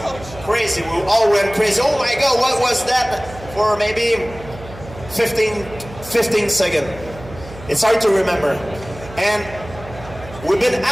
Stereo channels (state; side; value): noise; right; hum, 16 dB below the sound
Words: crazy. We all went crazy. Oh my God, what was that? For maybe 15 seconds. It's hard to remember. And we've been